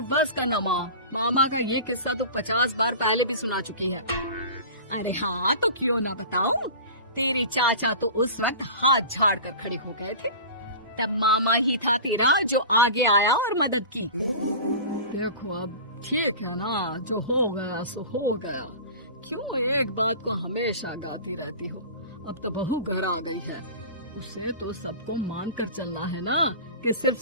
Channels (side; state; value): both; inverted; correlation -0.35